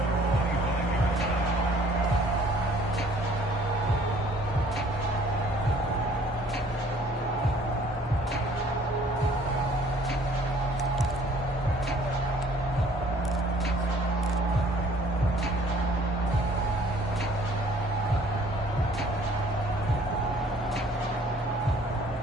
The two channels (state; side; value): normal; both; correlation 0.57